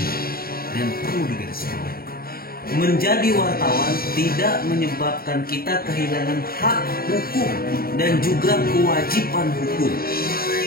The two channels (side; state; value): right; late; 0.43 ms